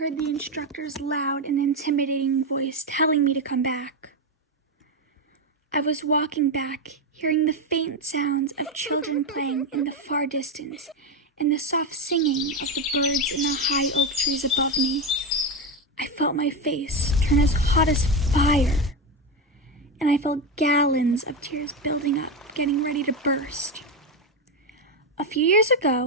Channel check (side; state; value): both; normal; correlation 0.12